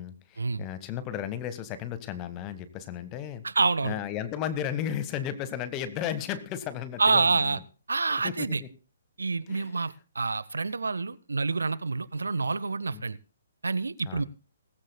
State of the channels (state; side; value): inverted; both; correlation -0.74